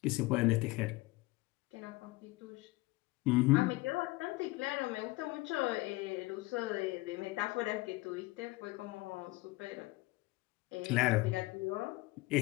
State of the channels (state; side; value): quieter; right; 21.4 dB